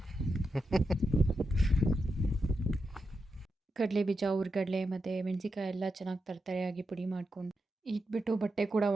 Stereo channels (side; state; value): both; normal; correlation 0.87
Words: ಕಡಲೆ ಬೀಜ, ಹುರ್ಗಡ್ಲೆ ಮತ್ತು ಮೆಣಸಿಕಾಯಿ ಎಲ್ಲ ಚೆನ್ನಾಗಿ ತರತರೆಯಾಗಿ ಪುಡಿ ಮಾಡ್ಕೊಂಡು ಇಟ್ಬಿಟ್ಟು ಬಟ್ಟೆ ಕೂಡ